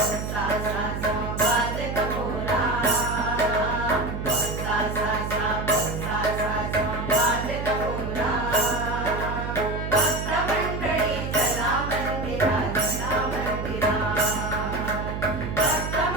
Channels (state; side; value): noise; right; hum, 5 dB below the sound